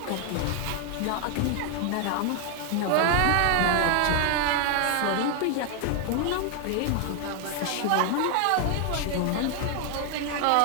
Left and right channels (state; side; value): different; both; correlation 0.00